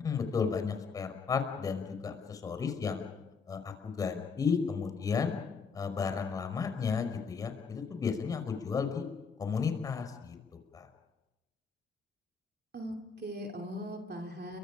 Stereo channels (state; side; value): quieter; right; 5.3 dB